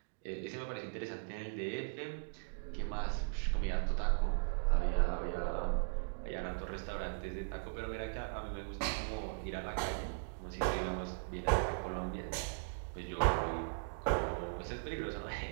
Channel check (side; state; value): left; silent; digital silence